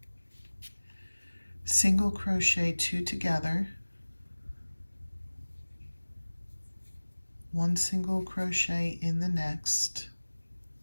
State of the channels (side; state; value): both; inverted; correlation -1.00